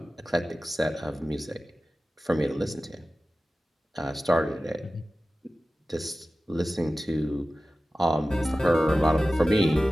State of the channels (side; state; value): both; normal; correlation 0.95